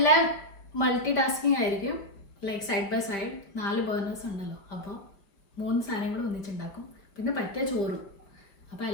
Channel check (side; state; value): right; late; 5.1 ms